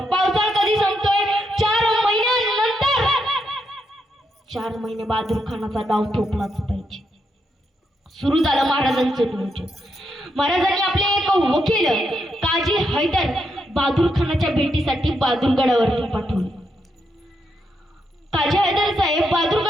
पावसाळा कधी संपतोय? 4 महिन्यानंतर. 4 महिने बहादूर खानाचा डाव थोपलाच पाहिजे. सुरू झालं महाराजांचं नियोजन. महाराजांनी आपले एक वकील काजी हैदर बहादूर खानाच्या भेटीसाठी बहादूरगडावरती पाठवले. काजी हैदर साहेब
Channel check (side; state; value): both; normal; correlation 0.81